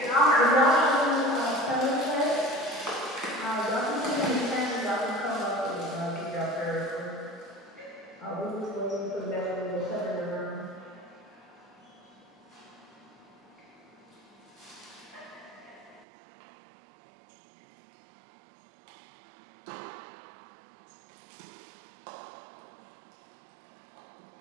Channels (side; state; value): left; drops out; at 16.1 s